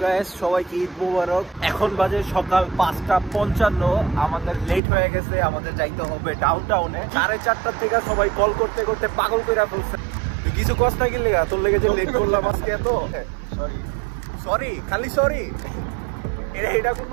গাইস, সবাইকে ঈদ মোবারক। এখন বাজে সকাল 5:55। আমাদের লেট হয়ে গেছে, আমাদের যাইতে হবে ডাউনটাউনে। 4:30 থেকে সবাই কল করতে করতে পাগল কইরা ফেলছে। তুই কিছু কষ্ট না গেলে তোর লেগে যে লেট করলাম আজকে এত সরি সরি খালি সরি। এটা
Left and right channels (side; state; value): left; drops out; at 4.8 s